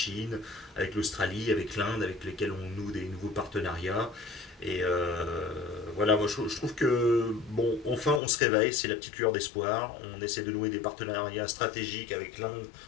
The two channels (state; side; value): drops out; right; at 8.2 s